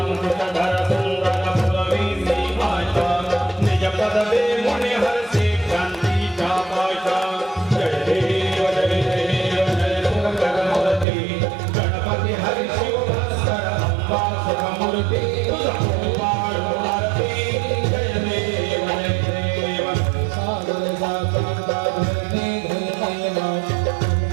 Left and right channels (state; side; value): drops out; left; at 11.1 s